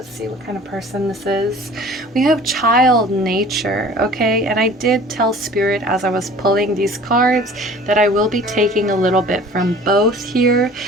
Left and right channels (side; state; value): both; normal; correlation 0.46